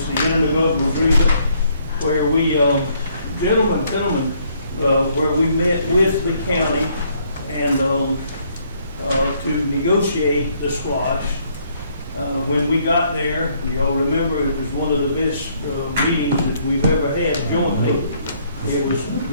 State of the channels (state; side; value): inverted; both; correlation -0.68